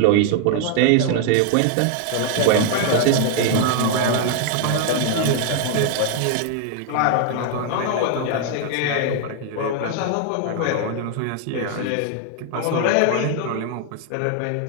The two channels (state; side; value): different; both; correlation 0.00